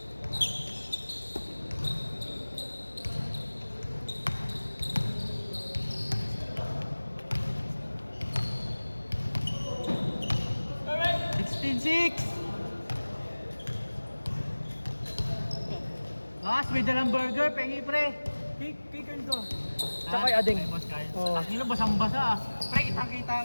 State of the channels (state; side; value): inverted; both; correlation -1.00